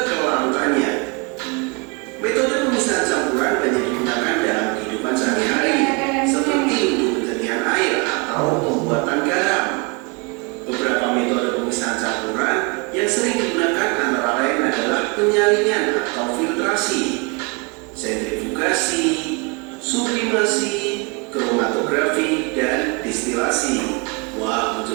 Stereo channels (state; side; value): quieter; left; 30.1 dB